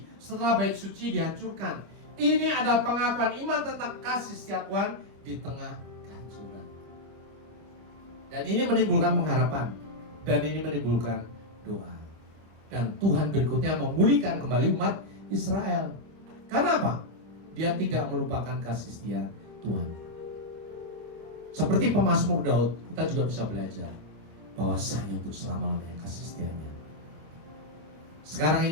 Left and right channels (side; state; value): left; late; 25 ms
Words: setelah bait suci dihancurkan. Ini adalah pengakuan iman tentang kasih setia Tuhan di tengah kehancuran. Dan ini menimbulkan pengharapan, dan ini menimbulkan doa. Dan Tuhan berikutnya memulihkan kembali umat Israel. Karena apa? Dia tidak melupakan kasih setia Tuhan. Seperti pemazmur Daud, kita juga bisa belajar bahwasanya untuk selama-lamanya kasih setianya. Sekarang